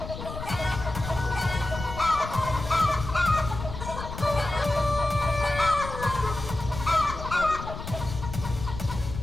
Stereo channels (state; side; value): noise; left; rumble, 8 dB below the sound